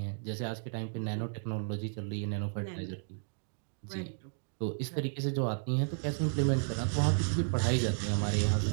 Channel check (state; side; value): silent; left; digital silence